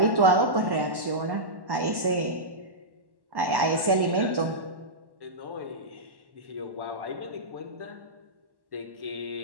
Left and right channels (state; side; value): late; left; 1.1 ms